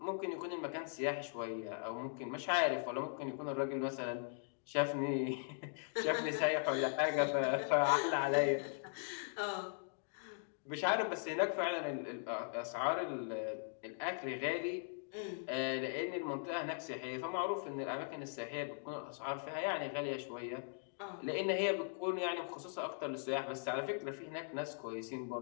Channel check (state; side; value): silent; right; digital silence